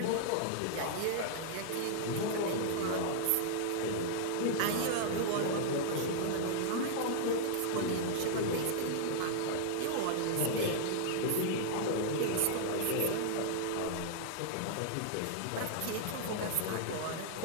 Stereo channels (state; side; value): different; both; correlation -0.01